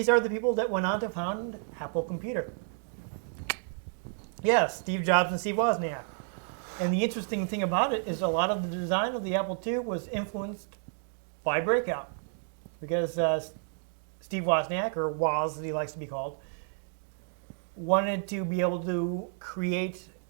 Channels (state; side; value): silent; left; 57 dB below the other